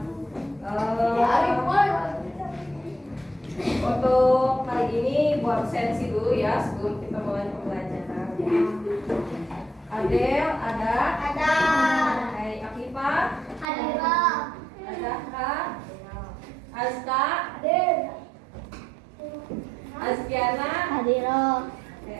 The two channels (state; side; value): drops out; left; at 13.7 s